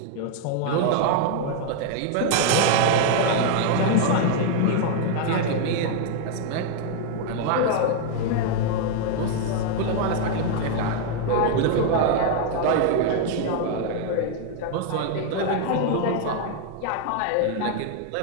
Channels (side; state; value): both; different; correlation 0.00